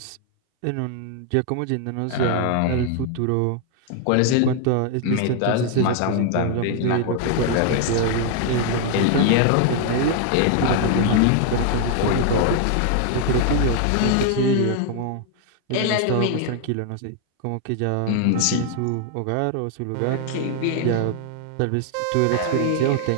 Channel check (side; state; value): both; different; correlation 0.00